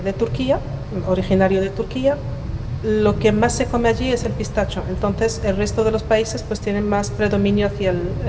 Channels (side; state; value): both; identical; correlation 1.00